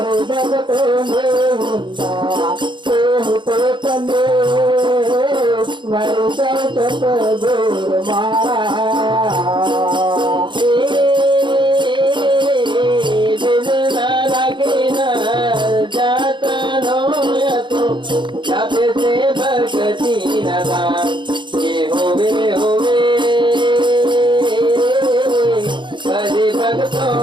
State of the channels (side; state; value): left; late; 0.23 ms